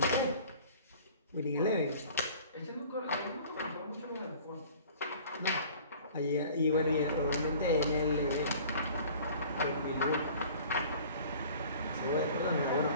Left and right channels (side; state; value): both; inverted; correlation -0.47